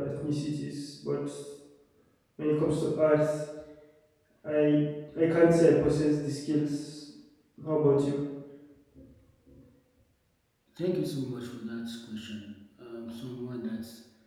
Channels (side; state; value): both; identical; correlation 1.00